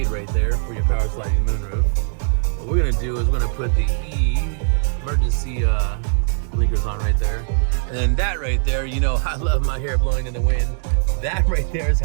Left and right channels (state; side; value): silent; left; digital silence